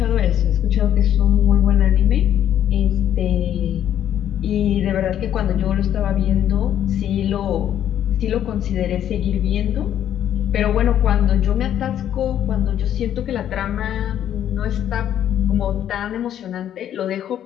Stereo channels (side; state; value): right; quieter; 10.5 dB